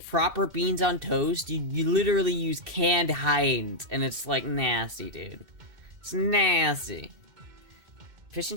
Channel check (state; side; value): late; left; 2.6 ms